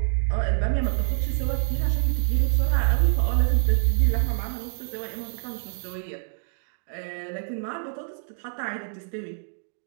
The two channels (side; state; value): left; silent; digital silence